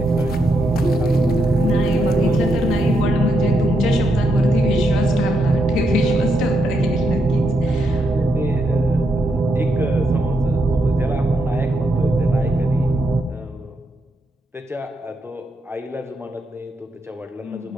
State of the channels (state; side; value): normal; both; correlation 0.80